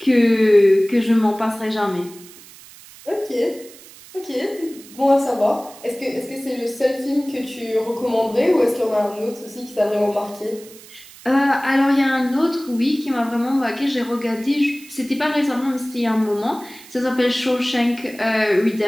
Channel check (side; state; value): right; noise; hiss, 20 dB below the sound